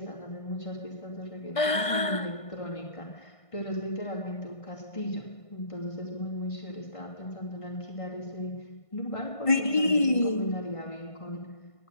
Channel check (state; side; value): late; right; 1.5 ms